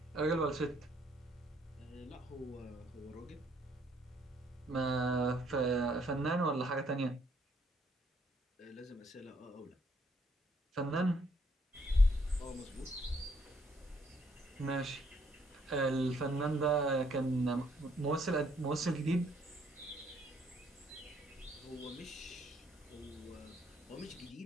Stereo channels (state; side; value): normal; both; correlation 0.68